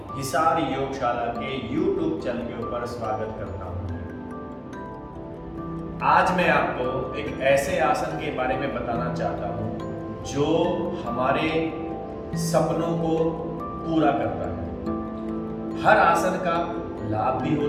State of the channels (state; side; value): identical; both; correlation 1.00